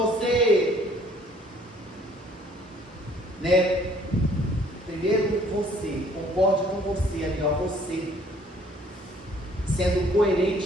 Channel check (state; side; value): normal; both; correlation 0.59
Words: primeiro você, concorde com você, ali, você, sendo